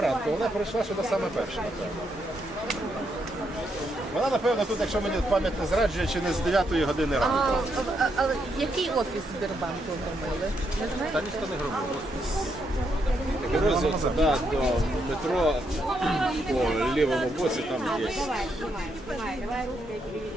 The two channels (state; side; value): normal; both; correlation 0.78